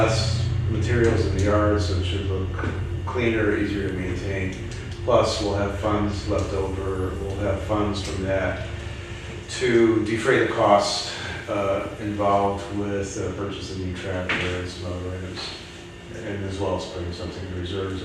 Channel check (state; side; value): identical; both; correlation 1.00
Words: materials in the yard, so it should look cleaner, easier to maintain. Plus, we'll have funds left over. We'll have funds from that to defray the costs involved with purchasing new tractor and some other items, and as well as putting something in reserves